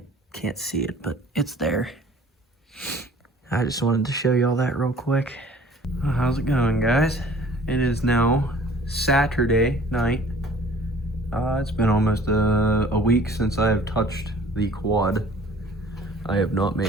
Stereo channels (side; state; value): both; normal; correlation 0.50